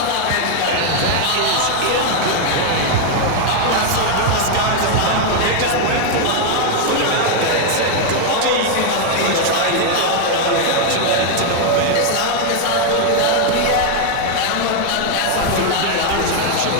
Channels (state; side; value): different; both; correlation 0.00